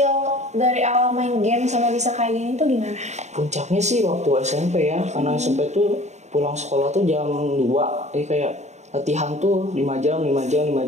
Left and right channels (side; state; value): left; late; 0.33 ms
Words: dari awal main game sama bisa kayak gini tuh gimana? Puncaknya sih waktu SMP ya, karena SMP tuh pulang sekolah tuh jam 2. Jadi kayak latihan tuh 5 jam.